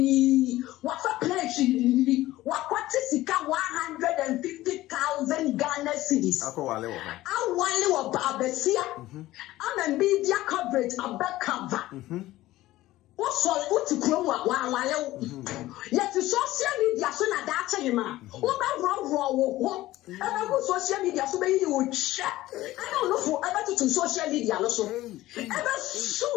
What's a place? What is 150,000 Ghana cities? I want Babesia. I'm a media coverage, a back cover. What to grow while yet to social media so that that's a man. What wrong? Ever social media so many you would share. I don't know for ever to social media also. Ever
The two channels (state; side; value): quieter; right; 16.4 dB